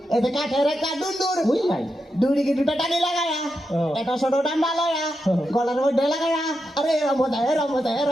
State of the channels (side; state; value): both; normal; correlation 0.86